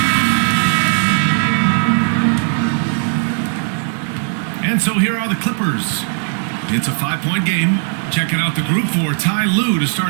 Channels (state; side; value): silent; left; 56 dB below the other